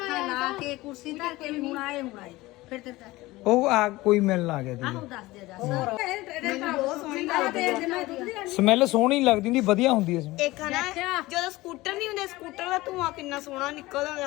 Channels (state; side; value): quieter; right; 19.4 dB